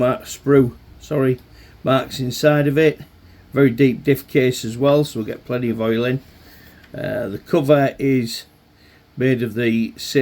marks inside of it. Very deep diff case as well, so we'll get plenty of oil in. The cover is made of the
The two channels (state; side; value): identical; both; correlation 1.00